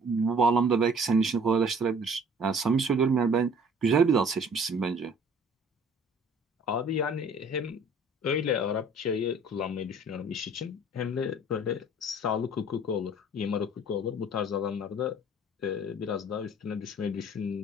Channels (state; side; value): normal; both; correlation 0.51